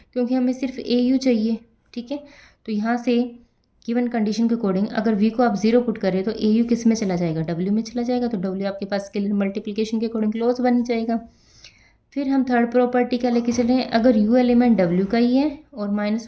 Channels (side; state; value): both; identical; correlation 1.00